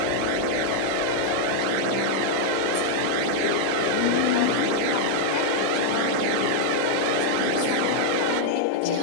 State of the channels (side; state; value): both; different; correlation -0.01